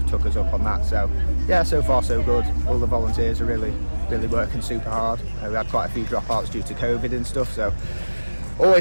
us up on that, so yeah, so far so good. All the volunteers are really working super hard. We had quite a few dropouts due to COVID and stuff, so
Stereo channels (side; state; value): both; inverted; correlation -1.00